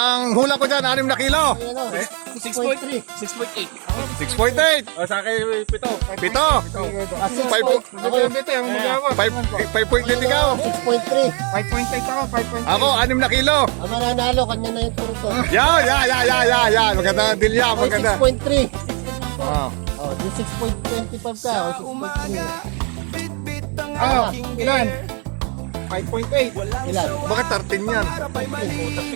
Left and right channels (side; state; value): left; quieter; 34.9 dB